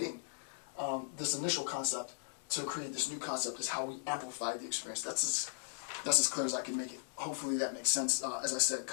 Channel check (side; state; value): right; silent; digital silence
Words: this initial concept to create this new concept is how we amplify the experience. That's as clear as I can make it. Hopefully that makes sense. As I said,